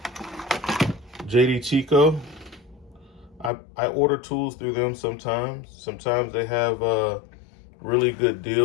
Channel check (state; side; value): drops out; right; at 3.5 s